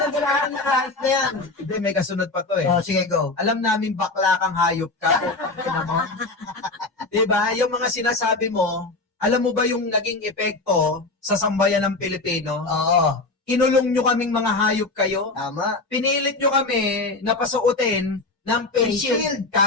galamin na kahit na yan. Hindi, may kasunod pa to eh. Oh, sige, go. Alam namin bakla kang hayop ka. Diba? Yung mga sinasabi mo, alam mo ba yung naging epekto sa sambayan ng Pilipino? Oo. Kinulong nyo kaming mga hayop kayo. Tama. Pinilit nyo kami na pasuotin ng face shield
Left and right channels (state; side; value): quieter; right; 3.3 dB